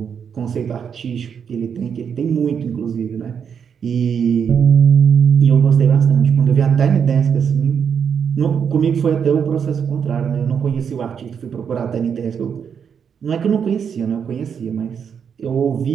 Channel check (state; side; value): quieter; left; 7.2 dB